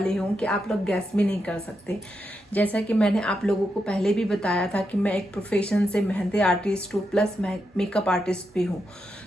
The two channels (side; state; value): both; normal; correlation 0.85